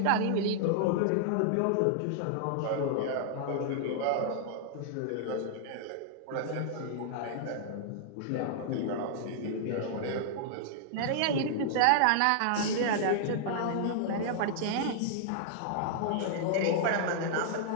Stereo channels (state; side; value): different; both; correlation -0.01